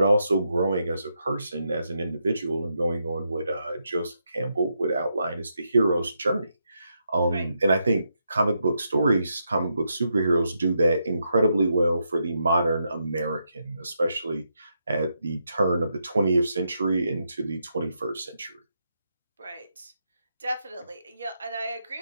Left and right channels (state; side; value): inverted; both; correlation -0.81